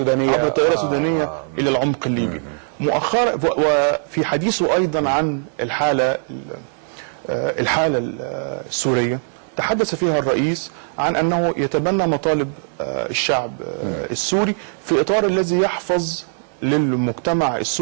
إلى العمق الليبي. مؤخرا وفي حديثه أيضا عن الحالة السورية تحدث فيها الرئيس عن أنه يتبنى مطالب الشعب السوري في إطار الذي يحفظ للمجتمع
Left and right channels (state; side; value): silent; left; 65 dB below the other